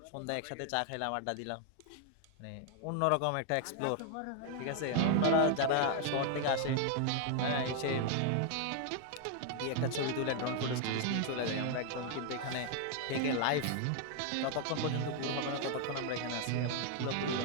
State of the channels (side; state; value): both; different; correlation 0.00